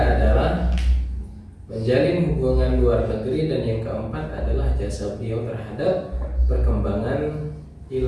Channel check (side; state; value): both; identical; correlation 1.00